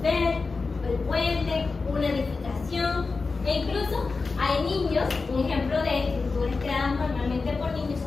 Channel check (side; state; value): right; quieter; 4.2 dB